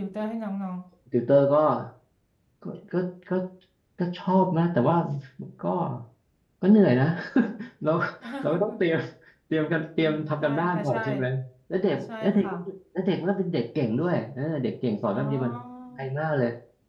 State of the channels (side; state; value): both; identical; correlation 1.00